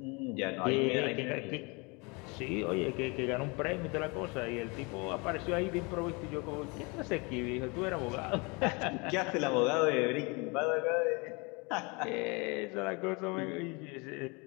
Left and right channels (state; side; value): quieter; right; 28.9 dB